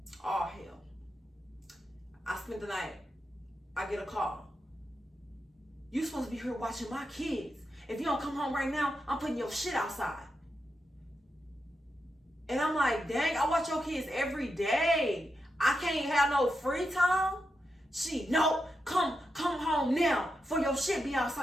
All hell. I spent the night. I get a call. You supposed to be here watching my kids. If you don't come home right now, I'm putting your shit outside. And I'm like, dang, I watch your kids every day. I can't have no free time. No, come home now for your shit be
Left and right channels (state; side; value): normal; both; correlation 0.87